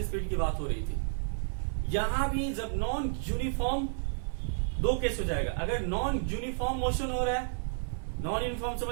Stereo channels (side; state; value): left; silent; 57 dB below the other